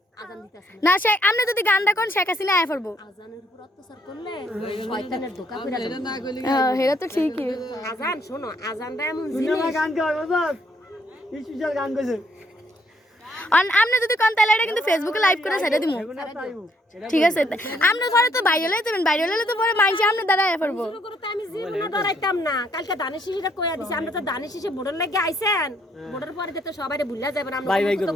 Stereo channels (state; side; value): normal; both; correlation 0.69